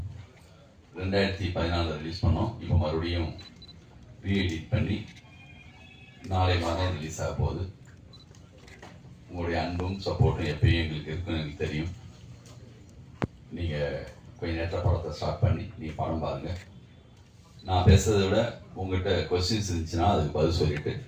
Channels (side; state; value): both; identical; correlation 1.00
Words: 2014 release பண்ணோம். இப்போ மறுபடியும் ரீஎடிட் பண்ணி நாளை மாதம் ரிலீஸ் ஆக போகுது. உங்களுடைய அன்பும் சப்போர்ட்டும் எப்பயும் எங்களுக்கு இருக்குன்னு எனக்கு தெரியும். நீங்கள் கொஞ்சம் நேரத்தில் படத்தை ஸ்டார்ட் பண்ணி நீங்கள் படம் பாருங்கள். நான் பேசுறதை விட உங்கள்கிட்ட கொஸ்டின்ஸ் இருந்துச்சுன்னா அதுக்கு பதில் சொல்லிட்டு